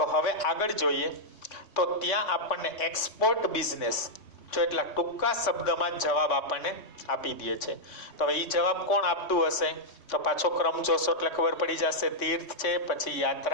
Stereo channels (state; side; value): late; right; 3.7 ms